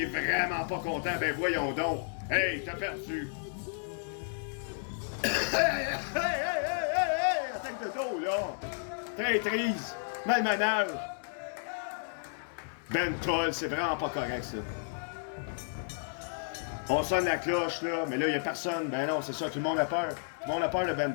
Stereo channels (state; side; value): silent; right; digital silence